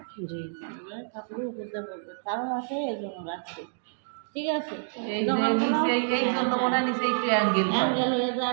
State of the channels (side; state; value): left; silent; digital silence